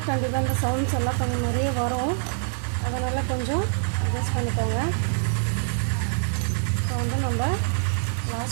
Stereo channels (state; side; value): silent; left; 62 dB below the other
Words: கண்டிப்பாக இந்த சவுண்ட்ஸ் எல்லாம் கொஞ்சம் நிறைய வரும். அதனால் கொஞ்சம் அட்ஜஸ்ட் பண்ணிக்கோங்க. இப்போ வந்து நம்ம